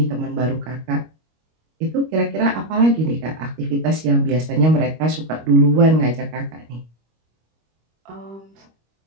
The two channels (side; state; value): left; late; 25 ms